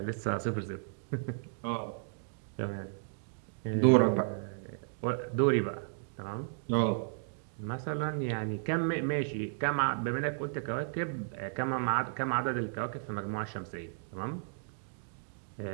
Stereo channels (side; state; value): left; silent; digital silence